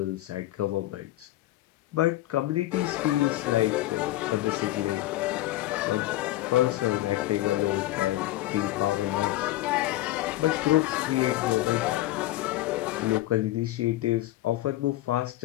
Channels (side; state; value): right; quieter; 16.1 dB